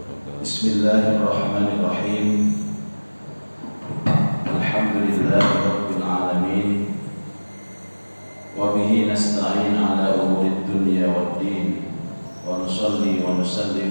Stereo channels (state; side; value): inverted; both; correlation -1.00